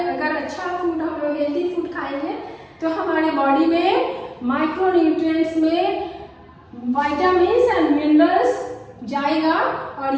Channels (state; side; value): identical; both; correlation 1.00